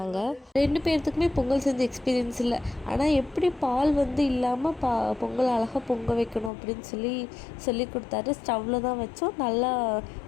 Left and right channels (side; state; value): right; drops out; at 6.5 s